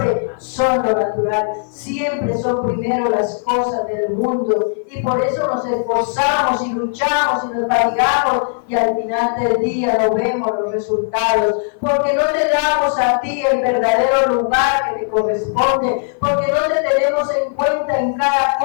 son lo natural, siempre son primero las cosas del mundo, y por eso nos esforzamos y luchamos y nos fatigamos, y al final del día no vemos los resultados, porque no te damos a ti el verdadero lugar que te corresponde, porque no te tenemos en cuenta en cada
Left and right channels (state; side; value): silent; right; 56 dB below the other